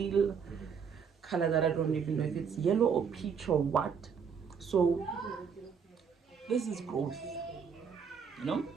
color that I don't even know if it's yellow or peach or what. So this is growth, you know.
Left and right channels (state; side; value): quieter; left; 6.5 dB